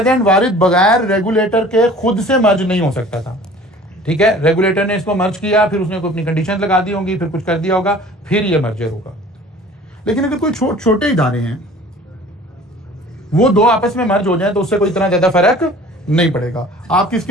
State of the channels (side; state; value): both; normal; correlation 0.47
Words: एंड वारिद बगैर रेगुलेटर के खुद से मर्ज नहीं हो सकता था, ठीक है। रेगुलेटर ने इसको मर्ज किया, फिर उसने कोई अपनी कंडीशन लगा दी होंगी, फिर कुछ कर दिया होगा, फिर ये मर्जर होगा। लेकिन अगर कोई छोटे इदारे हैं वो दो आपस में मर्ज हो जाए तो उससे कोई इतना ज्यादा फर्क नहीं पड़ेगा। आप किस